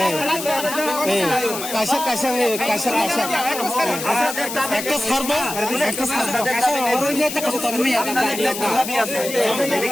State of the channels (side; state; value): left; noise; hiss, 7 dB below the sound